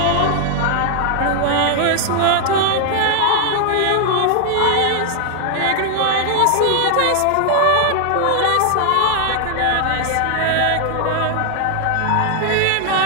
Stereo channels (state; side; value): different; both; correlation 0.00